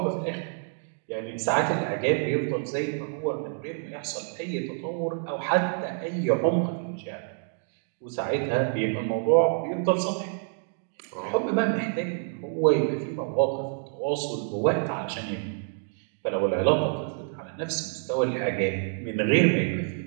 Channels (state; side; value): silent; left; 60 dB below the other